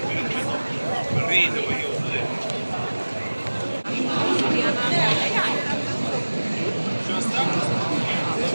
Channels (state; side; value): inverted; both; correlation -1.00